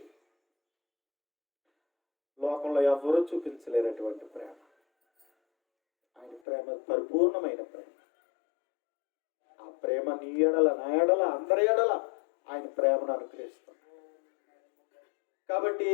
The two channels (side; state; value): right; drops out; at 6.4 s